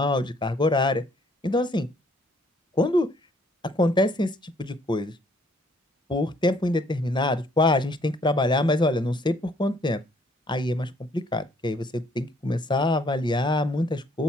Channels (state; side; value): normal; both; correlation 0.64